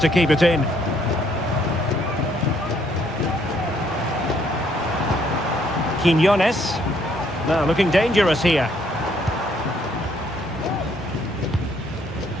keep it in. Quiñones. Now looking dangerous here.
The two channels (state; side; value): normal; both; correlation 0.68